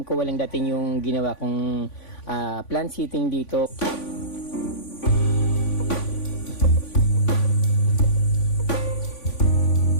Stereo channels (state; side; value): late; right; 3.5 ms